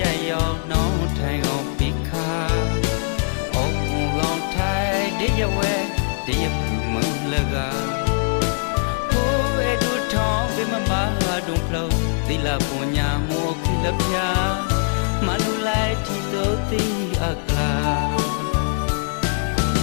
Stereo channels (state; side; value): silent; right; digital silence